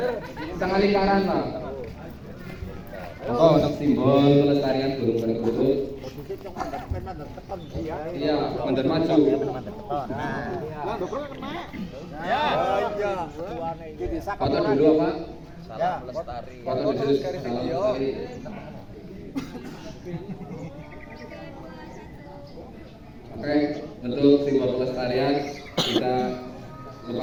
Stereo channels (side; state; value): both; identical; correlation 1.00